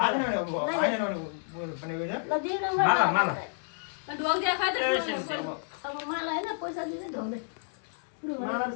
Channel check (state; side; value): silent; right; digital silence